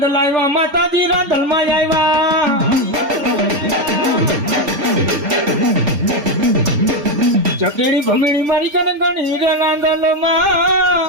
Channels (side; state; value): left; late; 4.3 ms